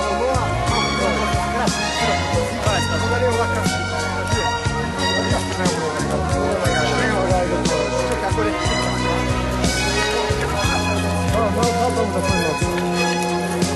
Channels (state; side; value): identical; both; correlation 1.00